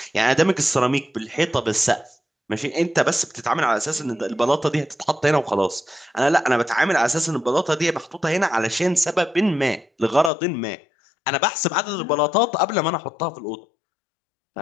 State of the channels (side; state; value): right; drops out; at 10.3 s